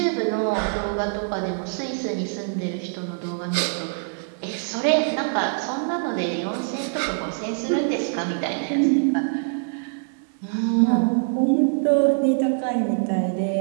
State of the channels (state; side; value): silent; left; digital silence